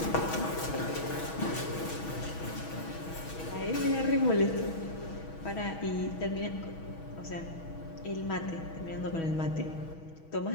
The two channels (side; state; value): right; late; 6.2 ms